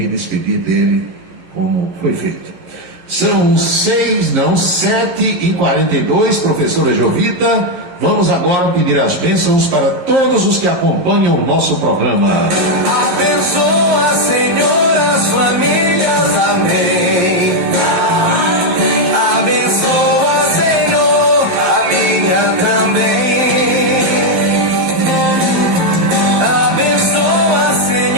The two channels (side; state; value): left; late; 11 ms